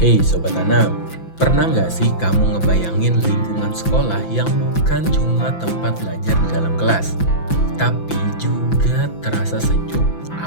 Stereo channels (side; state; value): right; late; 5.9 ms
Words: Hey Sobat Tanam, pernah nggak sih kamu ngebayangin lingkungan sekolah yang bukan cuma tempat belajar di dalam kelas, tapi juga terasa sejuk,